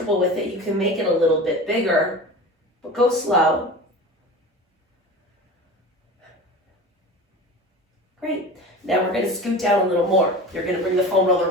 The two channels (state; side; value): normal; both; correlation 0.34